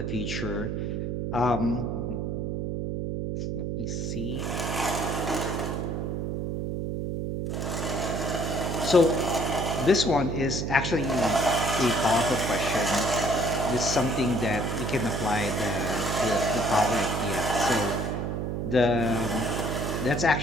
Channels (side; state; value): right; noise; hum, 2 dB below the sound